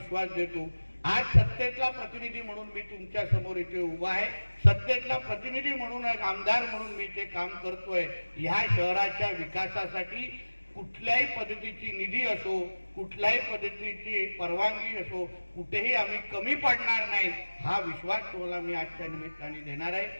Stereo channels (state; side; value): inverted; both; correlation -1.00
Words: देतो. आज सत्तेतला प्रतिनिधी म्हणून मी तुमच्या समोर इथे उभा आहे. सत्तेतला प्रतिनिधी म्हणून, एक आमदार म्हणून मी इथे काम करतोय. ह्या शहराच्या विकासासाठी कुठल्याही पद्धतीची निधी असो, कुठल्याही पद्धतीची परवानगी असो, कुठेही आम्ही कमी पडणार नाही, हा विश्वास तुम्हाला मी आजच्या निमित्ताने देणार आहे.